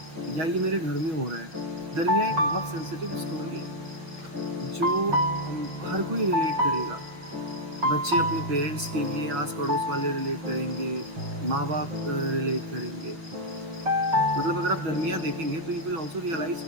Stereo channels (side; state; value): left; late; 6.4 ms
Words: या ये मेरे घर में हो रहा है। दरमिया एक बहुत सेंसिटिव स्टोरी है जो हर कोई रिलेट करेगा। बच्चे अपने पेरेंट्स के लिए, आस पड़ोस वाले रिलेट करेंगे, माँ बाप रिलेट करेंगे। मतलब अगर आप दरमिया देखेंगे तो यू विल आल्सो रियलाइज